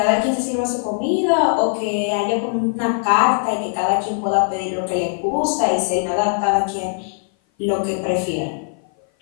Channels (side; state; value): right; silent; 57 dB below the other